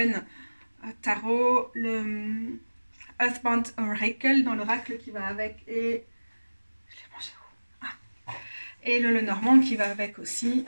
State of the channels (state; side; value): inverted; both; correlation -1.00